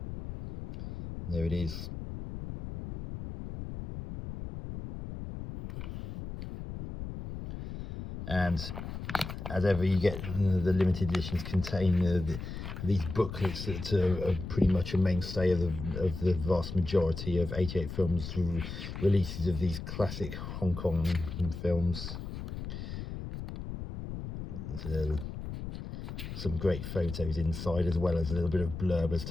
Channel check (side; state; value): left; noise; rumble, 7 dB below the sound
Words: There it is. And as ever, you get the limited editions contain these booklets that are pretty much a mainstay of the vast majority of 88 films releases of these classic Hong Kong films. Some great photos inside, as well as a little bit of blurb as